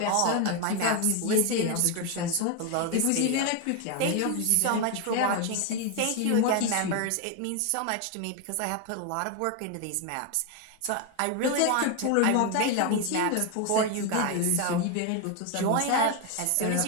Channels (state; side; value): different; both; correlation 0.01